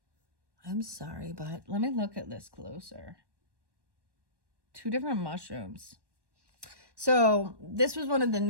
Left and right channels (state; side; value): late; left; 1.1 ms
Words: I'm sorry, but let me look at this closer. 2 different mushrooms. So this was one of the